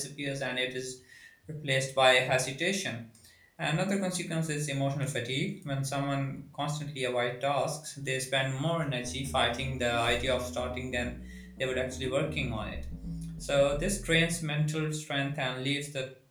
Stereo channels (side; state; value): both; identical; correlation 1.00